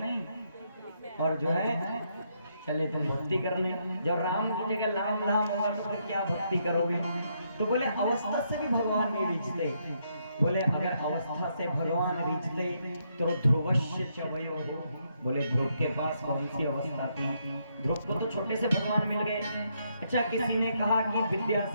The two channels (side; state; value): both; inverted; correlation -0.76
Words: और जो है चले तुम भक्ति करने। जब राम की जगह लाम लाम होगा तो फिर क्या भक्ति करोगे? तो बोले अवस्था से भी भगवान नहीं रिझते। बोले अगर अवस्था से भगवान रिझते तो ध्रुवस्य च वयो। बोले ध्रुव के पास कौन सी अवस्था थी? ध्रुव को तो छोटे से भगवान मिल गए। अच्छा, किसी ने कहा कि विद्या